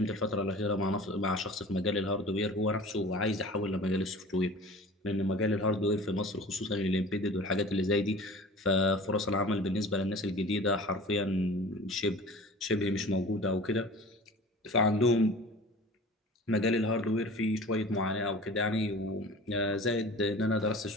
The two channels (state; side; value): normal; both; correlation 0.40